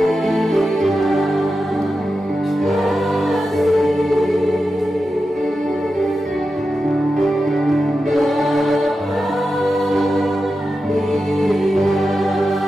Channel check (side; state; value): both; normal; correlation 0.91